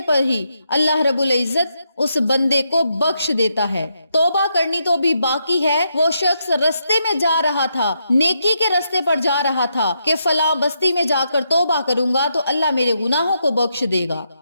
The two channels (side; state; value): both; inverted; correlation -0.81